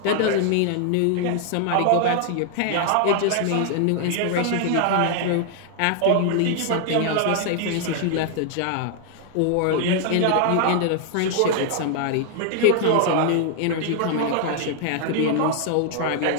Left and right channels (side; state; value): both; different; correlation 0.00